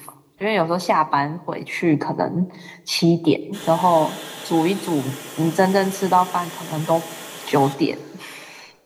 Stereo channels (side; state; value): both; identical; correlation 1.00